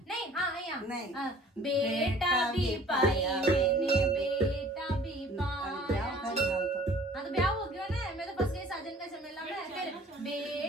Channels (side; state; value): both; normal; correlation 0.51